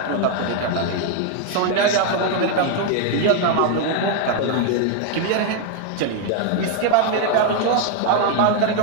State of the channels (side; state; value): both; different; correlation 0.00